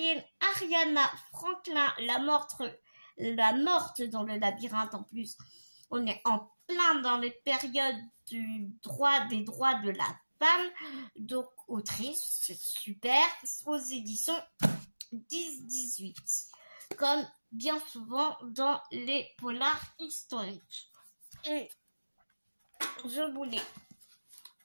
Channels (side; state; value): both; inverted; correlation -1.00